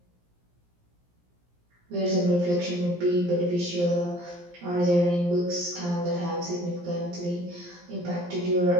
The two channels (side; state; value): left; late; 17 ms